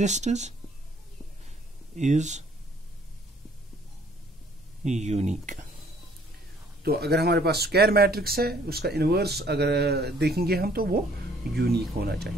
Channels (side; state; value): both; normal; correlation 0.60